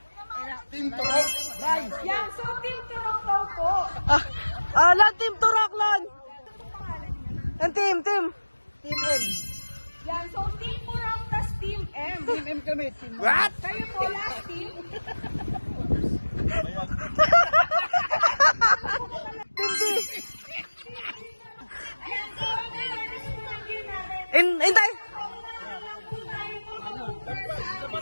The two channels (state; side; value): inverted; both; correlation -1.00